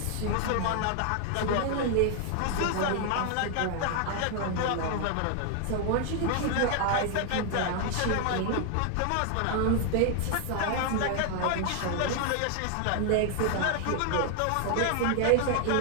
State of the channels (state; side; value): different; both; correlation 0.00